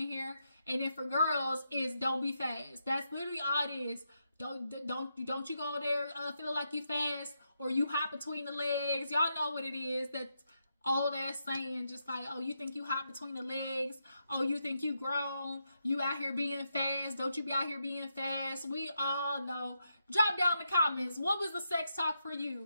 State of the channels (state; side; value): inverted; both; correlation -0.83